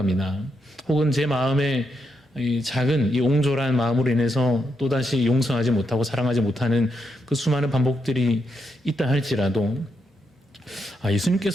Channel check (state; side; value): normal; both; correlation 0.81